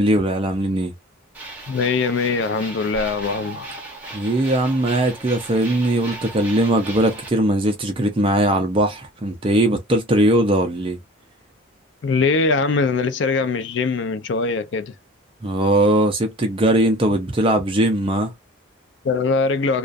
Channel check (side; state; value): both; normal; correlation 0.43